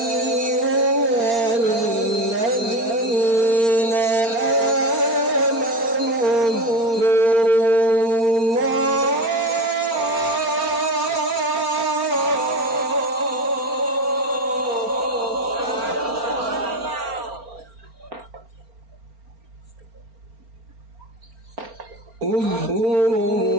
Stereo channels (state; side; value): late; left; 4.3 ms